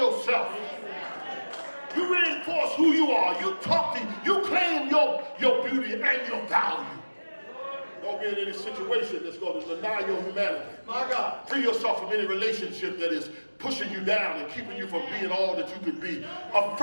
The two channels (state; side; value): inverted; both; correlation -1.00